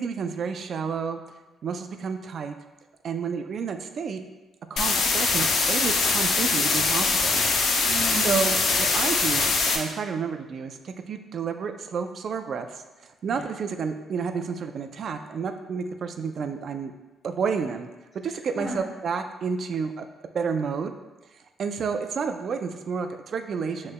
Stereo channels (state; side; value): normal; both; correlation 0.68